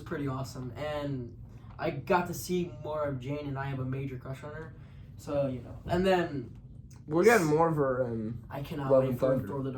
awesome, and I got to see more of Jane, and I have a major crush on her. So, and then we're getting more of her in I cannot Love wait and for Thunder. Thor: The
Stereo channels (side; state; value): both; identical; correlation 1.00